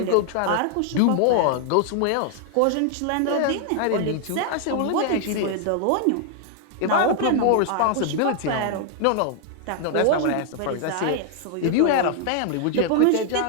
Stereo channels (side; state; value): both; different; correlation 0.00